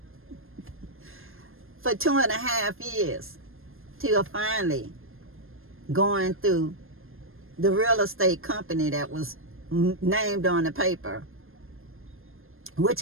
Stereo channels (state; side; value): late; left; 0.60 ms